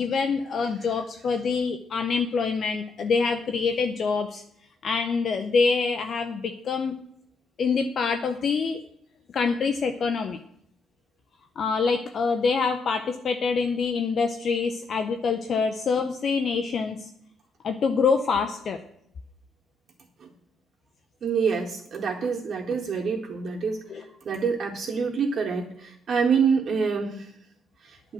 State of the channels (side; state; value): both; normal; correlation 0.74